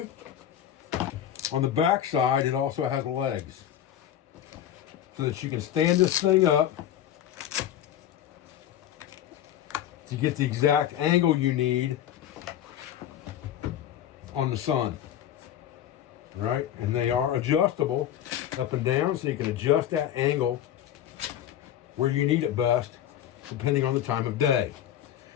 On the back side, it also has legs so that you can stand this thing up to get the exact angle you need on the sun, right? And they are adjustable up and down, so you can adjust that angle where you need it best, depending on the time of day.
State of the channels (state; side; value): quieter; right; 10.9 dB